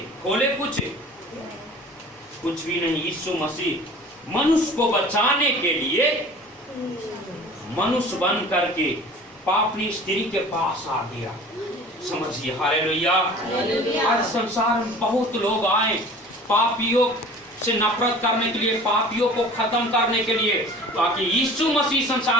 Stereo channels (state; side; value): normal; both; correlation 0.44